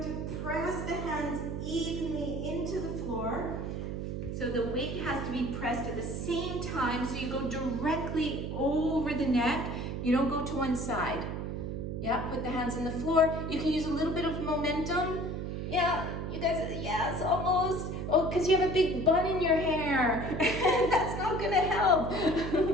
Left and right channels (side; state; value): right; noise; hum, 4 dB below the sound